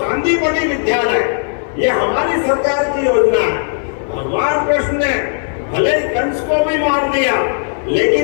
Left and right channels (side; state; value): right; silent; 66 dB below the other